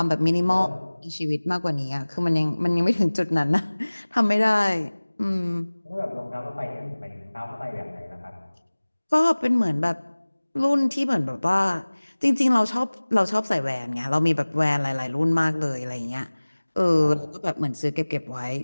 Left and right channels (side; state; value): both; inverted; correlation -1.00